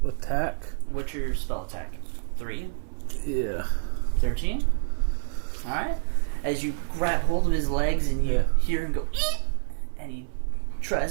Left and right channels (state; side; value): silent; left; 60 dB below the other